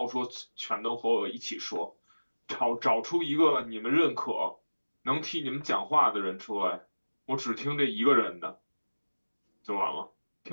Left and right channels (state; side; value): inverted; both; correlation -1.00